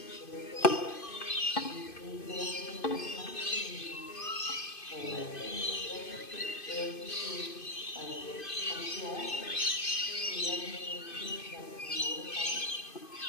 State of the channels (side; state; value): right; late; 2.5 ms